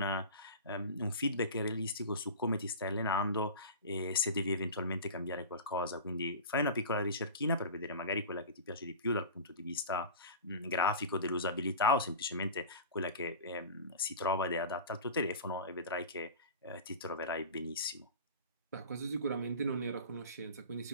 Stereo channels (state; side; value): inverted; both; correlation -0.33